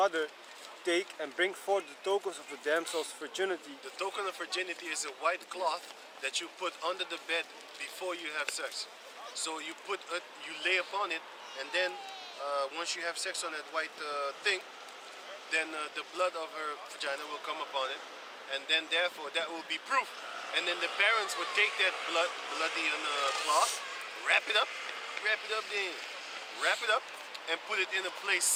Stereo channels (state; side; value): identical; both; correlation 1.00